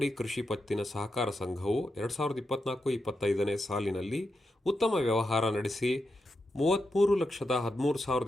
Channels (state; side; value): normal; both; correlation 0.87